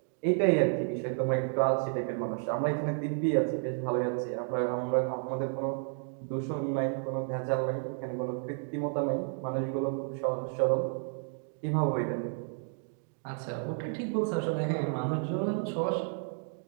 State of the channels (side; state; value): left; silent; 57 dB below the other